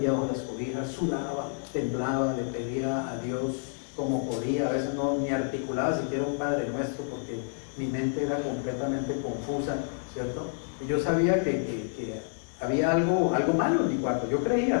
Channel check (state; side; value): silent; right; digital silence